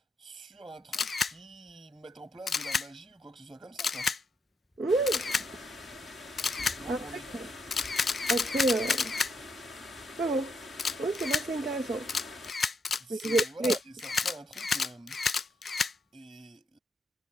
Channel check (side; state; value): both; normal; correlation 0.78